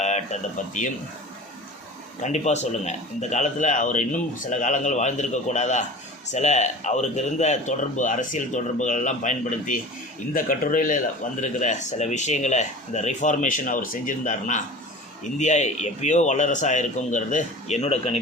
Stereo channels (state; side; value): normal; both; correlation 0.38